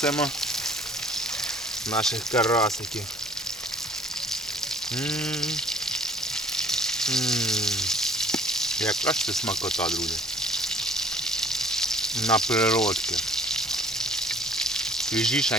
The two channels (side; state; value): both; normal; correlation 0.55